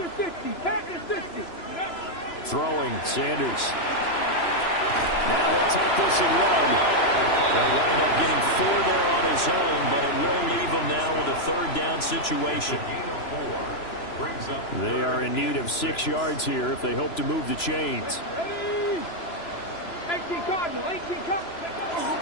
60, pack the 60. Throwing, Sanders. Now he'll take this and run. They'll wind up getting 4 there on his own, but it will leave him now with a 3rd down situation. They are in need of 6 yards here if they hope to move the chains. 18 Cardinal, 18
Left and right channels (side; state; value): right; late; 3.0 ms